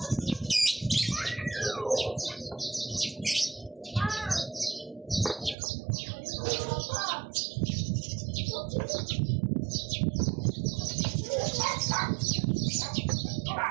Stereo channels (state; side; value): drops out; left; at 5.6 s